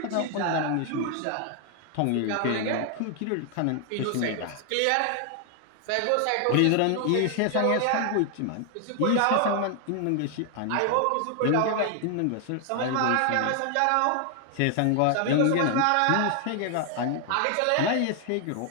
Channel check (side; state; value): both; different; correlation 0.00